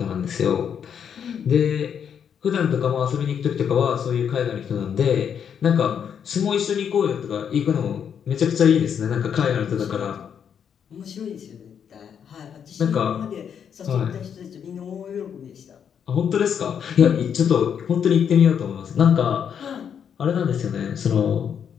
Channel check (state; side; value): quieter; right; 7.9 dB